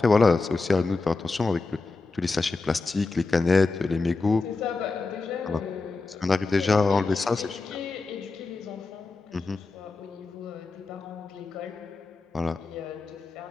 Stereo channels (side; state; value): right; quieter; 3.8 dB